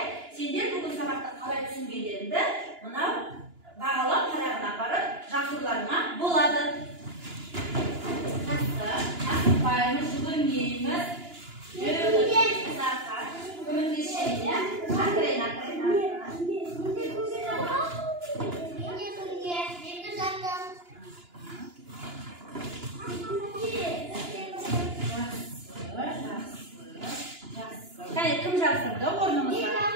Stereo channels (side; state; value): left; late; 2.9 ms